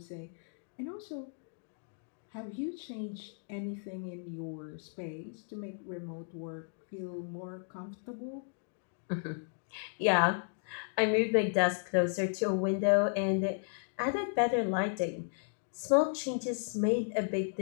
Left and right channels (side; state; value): right; silent; digital silence